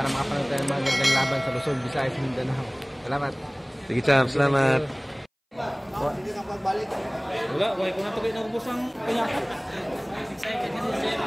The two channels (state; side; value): identical; both; correlation 1.00